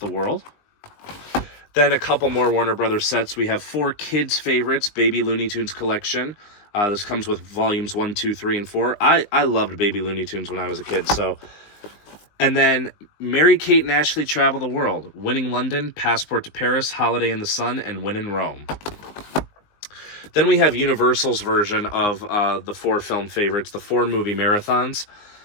World. Then a couple more Warner Brothers sets. We have 4 kids' favorites, Baby Looney Tunes collection. This comes with volumes 1, 2, 3, and 4. I loved Baby Looney Tunes when I was a kid, so... And then Mary Kate and Ashley Travel the World, Winning London, Passport to Paris, Holiday in the Sun, and Win in Rome. Then we have Universal's version of the 4 film favorites, the 4 movie marathons.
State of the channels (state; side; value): late; right; 19 ms